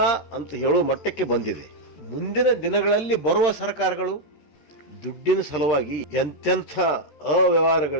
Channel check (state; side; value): late; right; 13 ms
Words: ಅಂತ ಹೇಳುವ ಮಟ್ಟಕ್ಕೆ ಬಂದಿದೆ. ಮುಂದಿನ ದಿನಗಳಲ್ಲಿ ಬರುವ ಸರ್ಕಾರಗಳು ದುಡ್ಡಿನ ಸಲುವಾಗಿ ಎಂತೆಂಥ